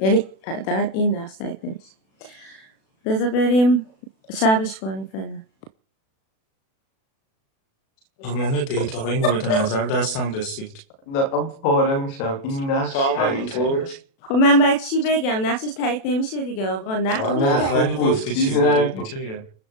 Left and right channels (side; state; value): right; late; 36 ms